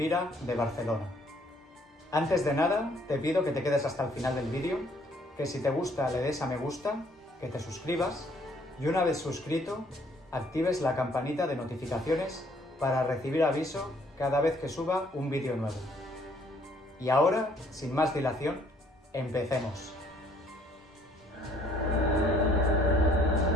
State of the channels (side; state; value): both; normal; correlation 0.63